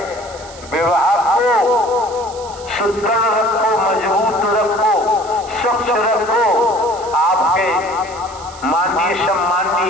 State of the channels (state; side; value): noise; right; hiss, 18 dB below the sound